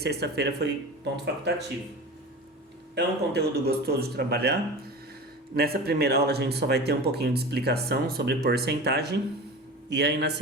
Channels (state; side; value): normal; both; correlation 0.32